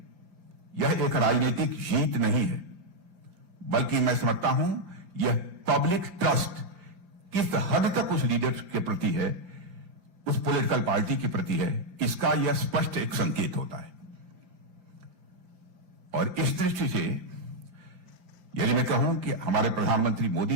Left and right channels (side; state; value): left; late; 5.4 ms